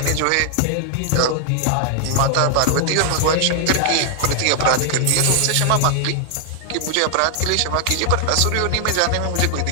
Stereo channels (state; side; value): different; both; correlation 0.00